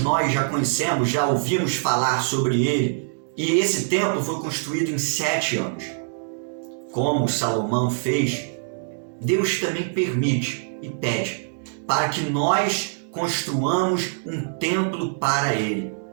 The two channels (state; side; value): silent; left; digital silence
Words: já conhecemos, já ouvimos falar sobre ele. E esse templo foi construído em 7 anos. Como Salomão fez, Deus também permite e pede para que nós construamos um templo para Ele.